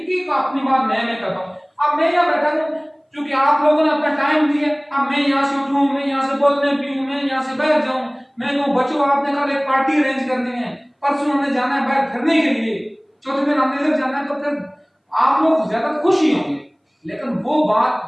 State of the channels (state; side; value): identical; both; correlation 1.00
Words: कि अपनी बात मैं करता हूं, अब मैं यहाँ बैठा हूं क्योंकि आप लोगों ने अपना टाइम दिया, अब मैं यहाँ से उठूं, मैं यहाँ से बोलने पीऊं, मैं यहाँ से बैठ जाऊं, मैं कहूं बच्चों आपने कल एक पार्टी अरेंज करनी है, परसों हमने जाना है बाहर फिरने के लिए, चौथे दिन हमने इधर जाना है, तो फिर आप लोग ज्यादा खुश ही होंगे। लेकिन वो